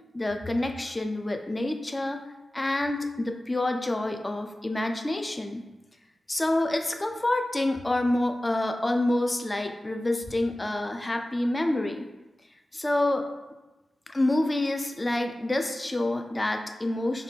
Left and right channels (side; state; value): both; normal; correlation 0.96